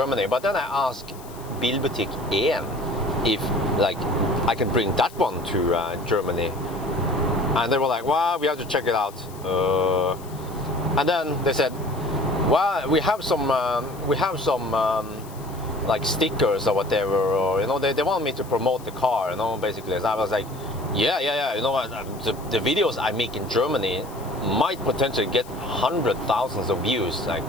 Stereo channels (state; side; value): noise; left; hiss, 21 dB below the sound